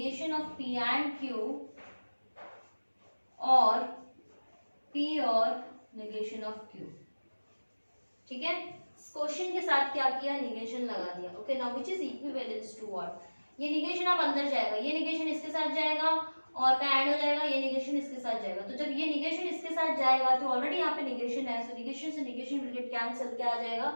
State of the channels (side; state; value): both; inverted; correlation -1.00